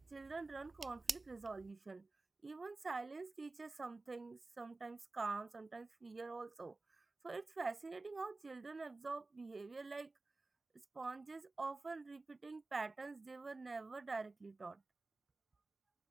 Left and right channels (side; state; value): left; quieter; 3.4 dB